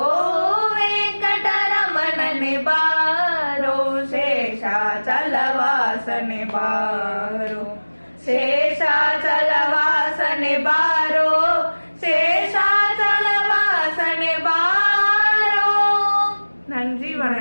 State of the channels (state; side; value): inverted; both; correlation -1.00